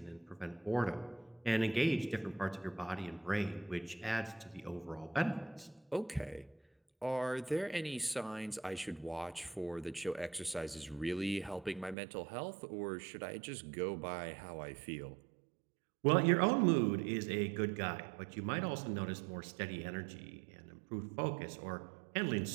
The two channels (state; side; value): drops out; left; at 12.0 s